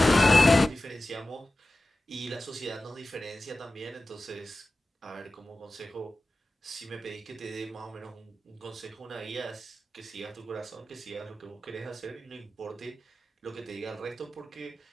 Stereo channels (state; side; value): normal; both; correlation 0.94